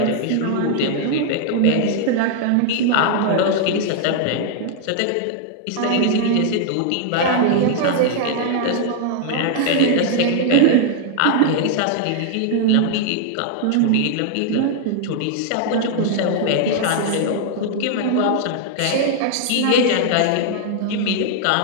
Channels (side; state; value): both; different; correlation 0.00